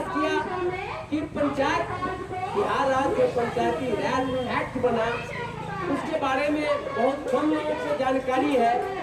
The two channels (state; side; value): identical; both; correlation 1.00